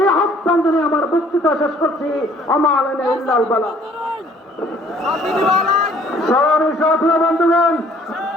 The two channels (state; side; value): normal; both; correlation 0.58